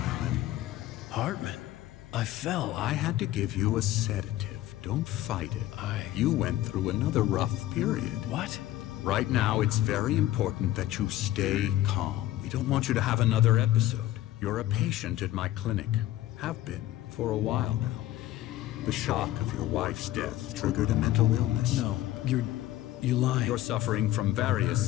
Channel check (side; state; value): right; quieter; 14.6 dB